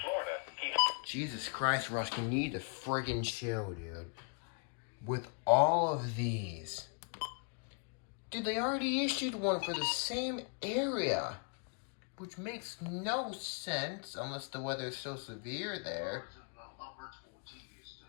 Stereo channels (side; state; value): right; quieter; 39.9 dB